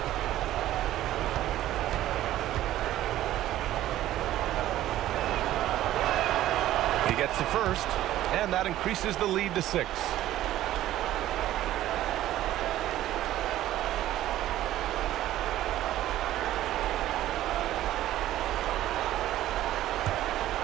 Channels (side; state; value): left; quieter; 13.8 dB